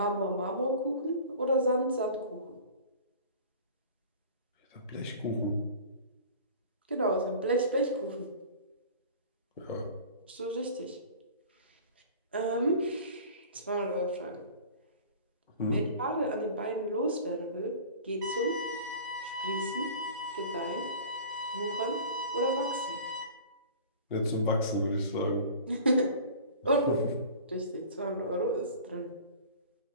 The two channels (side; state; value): both; inverted; correlation -0.41